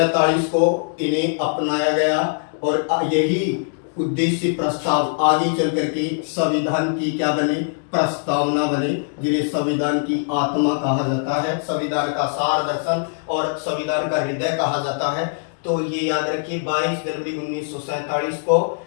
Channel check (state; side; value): silent; right; 65 dB below the other